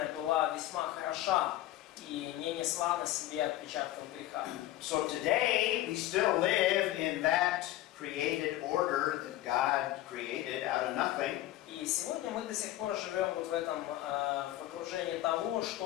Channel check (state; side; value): quieter; right; 14.9 dB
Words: была весьма хороша и не несла на себе отпечатков греха. So today we still live in that created order that God created out of nothing. И сегодня мы до сих пор живем вот в этом в окружении того,